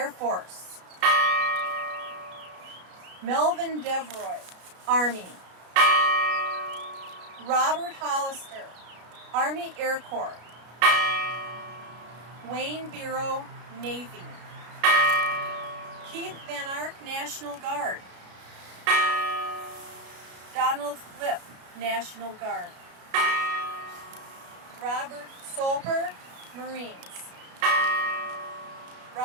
Force. Melvin Devroy, Army. Robert Hollister, Army Air Corps. Wayne Biro, Navy. Keith Van Ark, National Guard. Donald Flip, National Guard. Robert Solper, Marines.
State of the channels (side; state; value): left; late; 33 ms